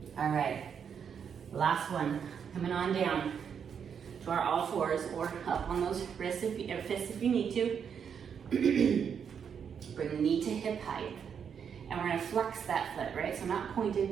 All right, last one. Coming on down to our all fours or up on those wrists or fists if you need to. Bring the knee to hip height. And we're gonna flex that foot, right? So not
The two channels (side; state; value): left; quieter; 7.3 dB